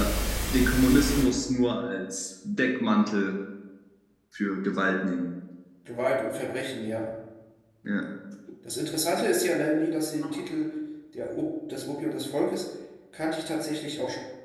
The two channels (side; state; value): both; identical; correlation 1.00